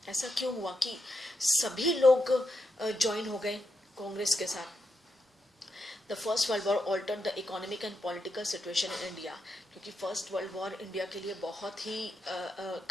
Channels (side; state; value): both; normal; correlation 0.84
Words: ऐसा क्यों हुआ कि सभी लोग join हो गए कांग्रेस के साथ? The First World War altered the economic and political situation in India, क्योंकि फर्स्ट वर्ल्ड वॉर इंडिया के लिए बहुत ही